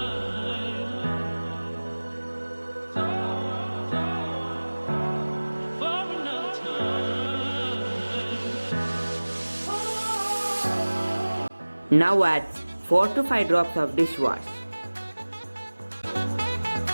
Now add 4 to 5 drops of dishwash.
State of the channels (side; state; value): both; inverted; correlation -1.00